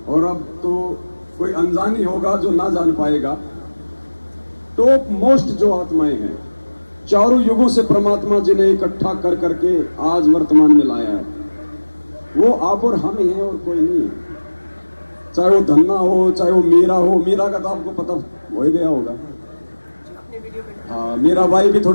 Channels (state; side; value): inverted; both; correlation -1.00